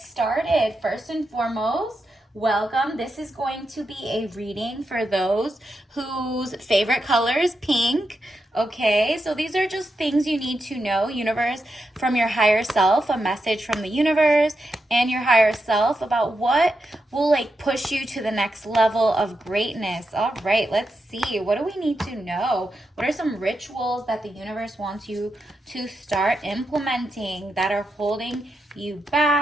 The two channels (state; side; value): normal; both; correlation 0.86